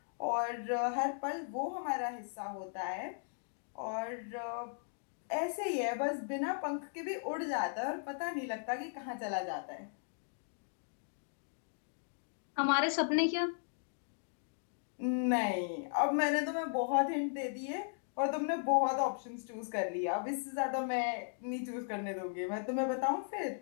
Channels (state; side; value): silent; right; digital silence